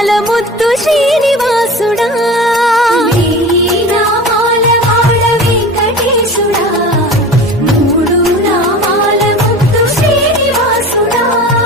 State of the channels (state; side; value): normal; both; correlation 0.35